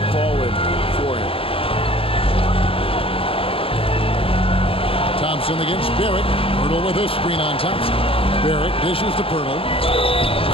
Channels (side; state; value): right; late; 0.26 ms